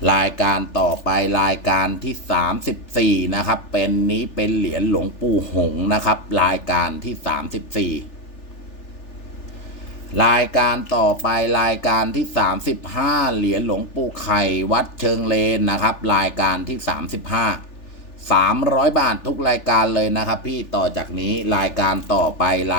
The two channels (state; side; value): late; right; 3.4 ms